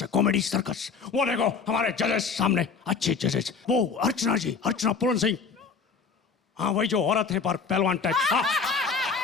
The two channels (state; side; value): quieter; right; 5.4 dB